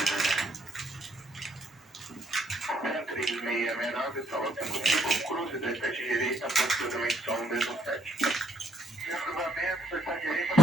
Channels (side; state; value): both; normal; correlation 0.71